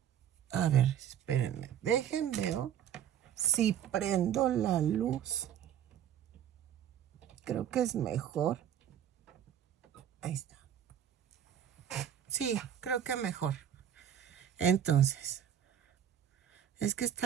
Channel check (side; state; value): left; quieter; 9.7 dB